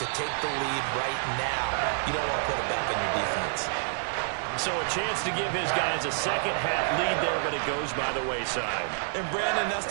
take the lead right now. You don't want to put it back on your defense. So a chance to give his guys a second-half lead there, but it goes by the wayside. And, Brandon, that's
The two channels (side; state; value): left; silent; 59 dB below the other